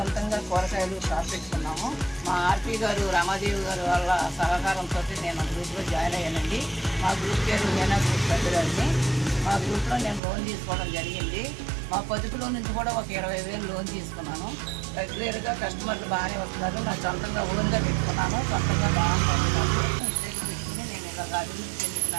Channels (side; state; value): left; drops out; at 10.2 s